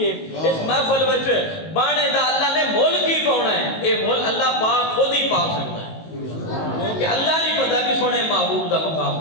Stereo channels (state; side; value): late; right; 19 ms